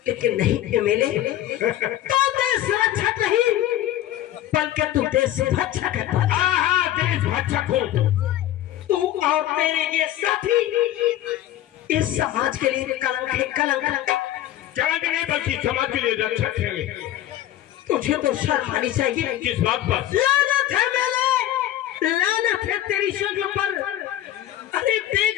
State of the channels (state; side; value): quieter; right; 13.1 dB